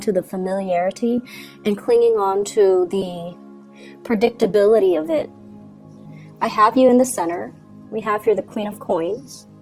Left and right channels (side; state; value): both; identical; correlation 1.00